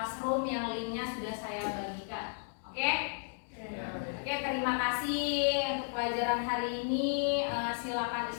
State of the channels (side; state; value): right; silent; digital silence